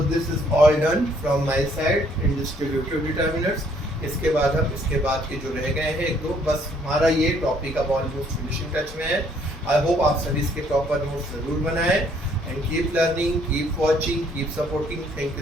this is all done from my side in distributive determinants. इसके बाद हम इसके बाद के जो रह गए हैं एक दो, बस हमारा ये टॉपिक अब ऑलमोस्ट फिनिशिंग टच में है. आई होप आप सभी इसके प्रॉपर नोट्स जरूर बनाएं. And keep learning, keep watching, keep supporting. Thank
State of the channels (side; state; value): both; normal; correlation 0.65